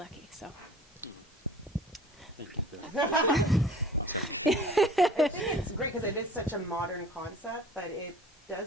So. Thank you for that. Oh, sorry. I think it's great because it is such a modern concept, but it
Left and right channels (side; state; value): both; normal; correlation 0.46